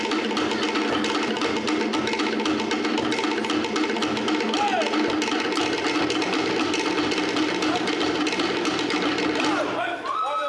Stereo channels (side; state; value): both; identical; correlation 1.00